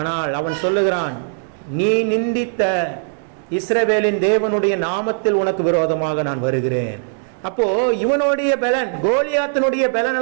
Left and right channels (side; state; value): left; silent; digital silence